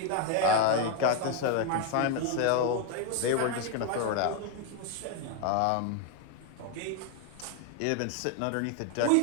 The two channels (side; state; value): both; different; correlation 0.01